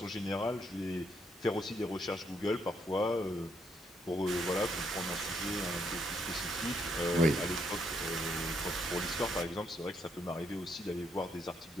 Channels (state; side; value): normal; both; correlation 0.74